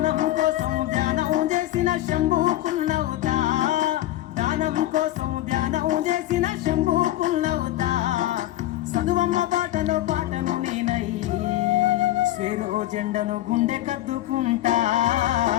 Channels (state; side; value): quieter; right; 14.6 dB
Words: కోసం ధ్యానం చేసిన శంభుకున్నవుతా దానం కోసం ధ్యానం చేసిన శంభుకున్నవుతా చదువమ్మ పాటలో పాటను నేనై స్వేరో జెండను గుండె కద్దుకుంటా